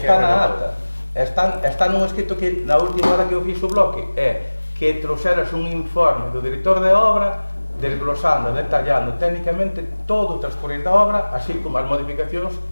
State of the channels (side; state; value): both; inverted; correlation -1.00